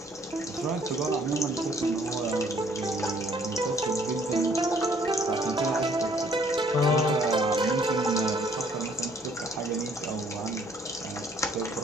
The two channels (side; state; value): both; normal; correlation 0.62